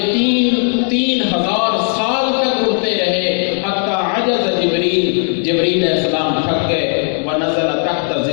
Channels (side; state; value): right; silent; 56 dB below the other